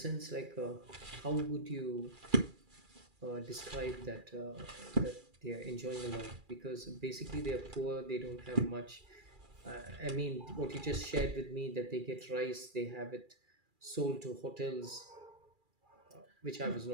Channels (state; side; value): late; left; 2.4 ms